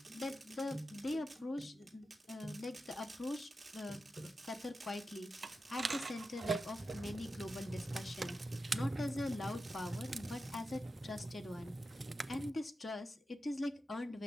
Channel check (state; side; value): normal; both; correlation 0.90